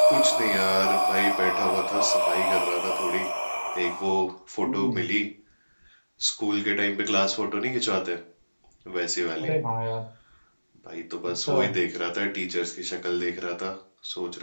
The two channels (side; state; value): both; inverted; correlation -1.00